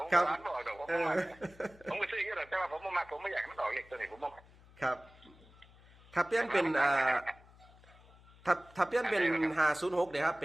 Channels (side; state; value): left; noise; hum, 25 dB below the sound